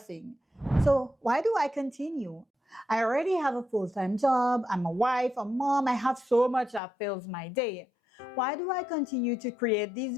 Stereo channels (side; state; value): right; drops out; at 6.8 s